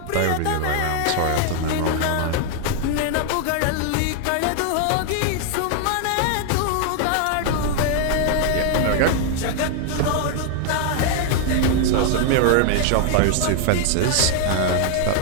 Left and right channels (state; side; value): different; both; correlation 0.00